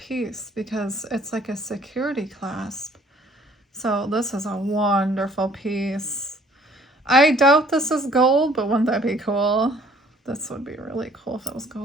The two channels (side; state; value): both; normal; correlation 0.58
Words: because it's like a security clasp. So this is a wonderful piece. I doubt this is gold, but wouldn't that be cool? This would be really cool if it was